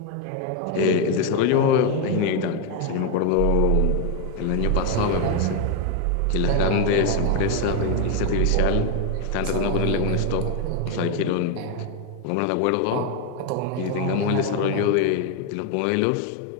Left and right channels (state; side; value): different; both; correlation 0.01